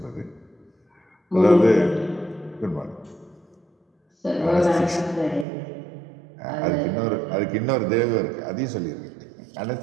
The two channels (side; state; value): left; drops out; at 5.5 s